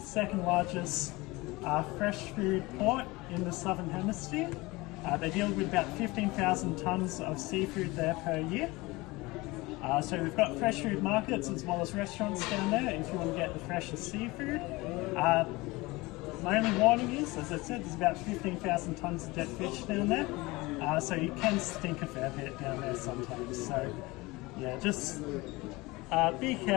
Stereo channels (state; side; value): quieter; right; 22.2 dB